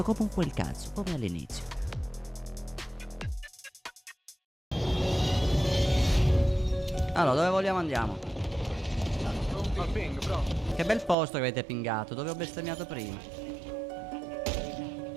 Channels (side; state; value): left; drops out; at 11.2 s